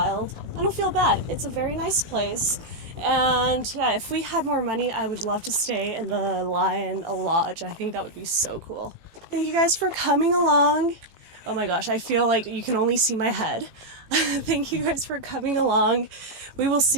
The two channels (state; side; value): late; left; 18 ms